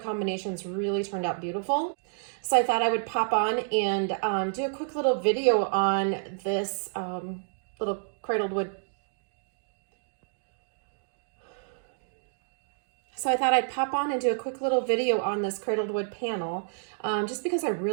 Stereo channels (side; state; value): left; silent; digital silence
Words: really turned out beautiful. So I thought I would pop on and do a quick little video on this little cradled wood. So I thought I'd pop on and do a quick little video on this cradled wood panel, just because I